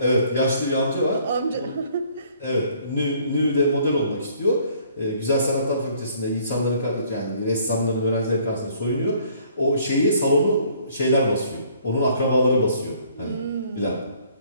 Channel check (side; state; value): both; inverted; correlation -0.60